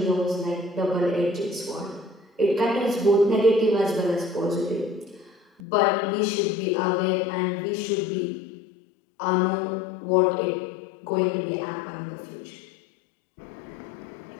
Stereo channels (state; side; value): drops out; right; at 5.6 s